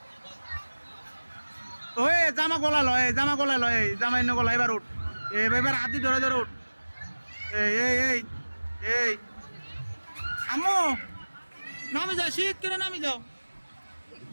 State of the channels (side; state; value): both; inverted; correlation -1.00